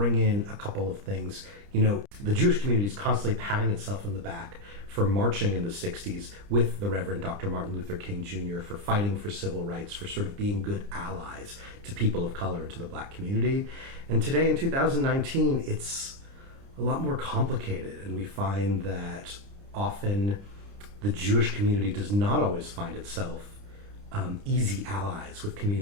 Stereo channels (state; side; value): late; left; 30 ms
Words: in a couple of things. You know, the Jewish community is constantly patting itself in the back for marching in the 60s with the Reverend Dr. Martin Luther King Jr., for fighting for civil rights, for sort of being good allies to people of color and to the Black community. And today in 2019, it's a lot more complicated, and we find that often the Jewish community does not always find itself easy allies with